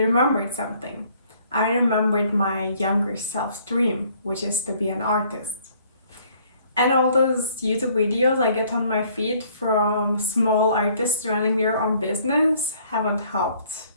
remembered something. I remembered my younger self's dream, which is to be an artist. And all those YouTube videos I get on my feed from small artists running their own business haven't helped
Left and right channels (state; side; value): inverted; both; correlation -0.61